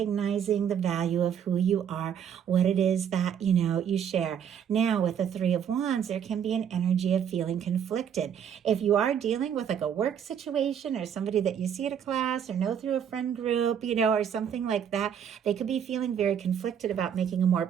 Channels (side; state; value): left; quieter; 8.5 dB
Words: the value of who you are, what it is that, you share. Now, with the Three of Wands, there can be an energy of feeling conflicted. If you are dealing with like a work situation or somebody that you see at a class or know through a friend group, or something like that, they could be feeling very conflicted about making a more